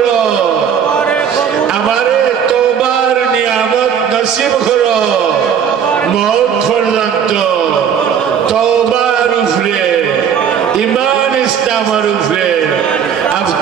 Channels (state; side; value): quieter; left; 7.9 dB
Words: আমারে তওবার নিয়ামত নসিব করো মওত পর্যন্ত তওবার উপরে ঈমান ইসলামের উপরে